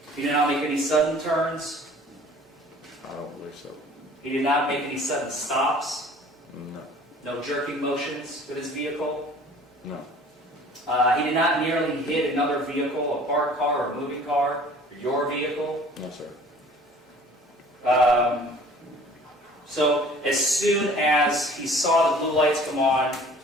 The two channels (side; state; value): both; normal; correlation 0.49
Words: He did not make any sudden turns? I don't believe so. He did not make any sudden stops? No. No jerking motions with his vehicle? No. He did not nearly hit another vehicle, a parked car or a moving car, or your vehicle? No, sir. So as soon as he saw the blue lights come on,